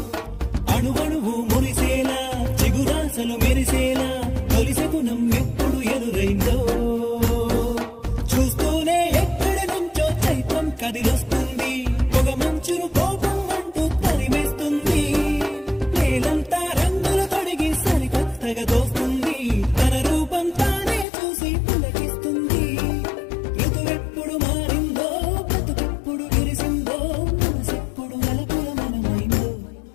అణువణువు మురిసేలా చిగురాసలు మెరిసేలా తొలిసెగుణం ఎప్పుడు ఎదురైందో చూస్తూనే ఎక్కడి నుంచో చైత్రం కదిలొస్తుంది పొగ మంచును కోపం అంటూ తరిమేస్తుంది నేలంతా రంగులు తొడిగి సరికొత్తగా దోస్తుంది తన రూపం తానే చూసి పులకిస్తుంది ఋతువెప్పుడు మారిందో బ్రతుకెప్పుడు విరిసిందో మనసెప్పుడు నలుపుల మనమైందో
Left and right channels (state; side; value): drops out; right; at 21.1 s